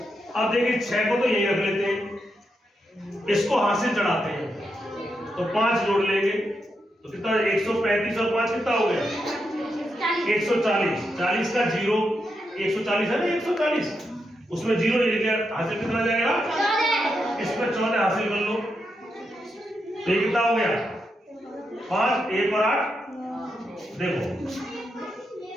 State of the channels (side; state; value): both; normal; correlation 0.84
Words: अब देखिए 6 को तो यही रख लेते हैं, इसको हाथ से चढ़ाते हैं तो 5 जोड़ लेंगे तो कितना? 135 और 5 कितना हो गया? 140। 40 का 0, 140 है ना, 140 उसमें 0 लिख लिया, हासिल कितना जाएगा? इसमें 14 हासिल कर लो तो ये कितना हो गया? 5, 1 और 8।